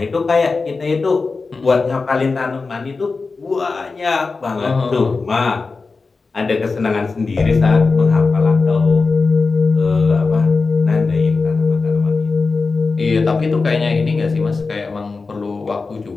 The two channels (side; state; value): right; quieter; 4.2 dB